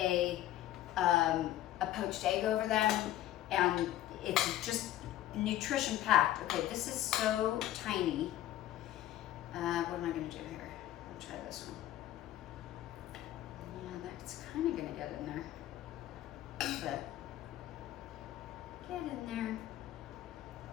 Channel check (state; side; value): quieter; right; 13.6 dB